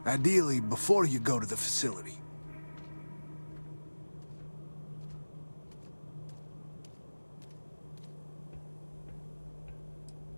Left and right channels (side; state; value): both; inverted; correlation -1.00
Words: Ideally, before you go to the facility.